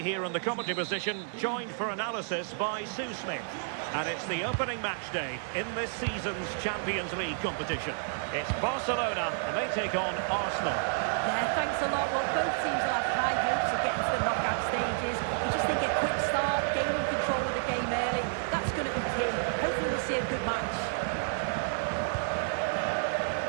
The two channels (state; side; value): silent; left; digital silence